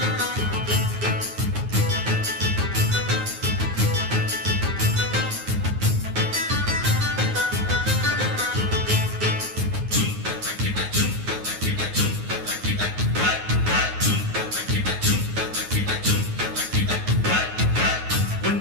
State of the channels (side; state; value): left; late; 9.5 ms